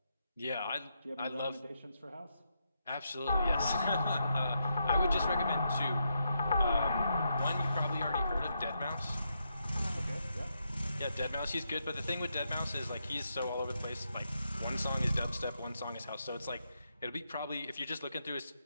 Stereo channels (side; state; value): both; inverted; correlation -0.82